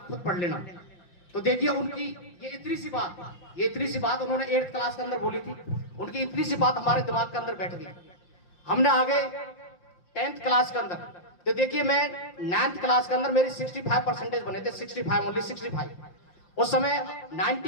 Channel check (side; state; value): right; late; 5.7 ms